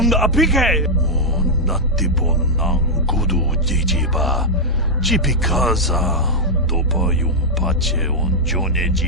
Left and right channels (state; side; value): normal; both; correlation -0.03